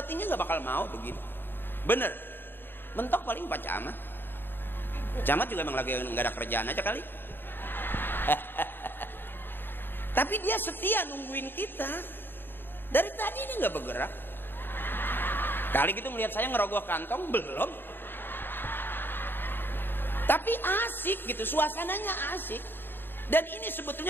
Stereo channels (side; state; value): right; late; 0.098 ms